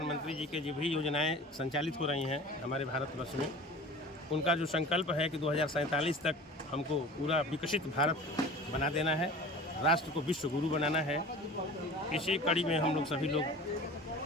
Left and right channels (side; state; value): both; normal; correlation 0.40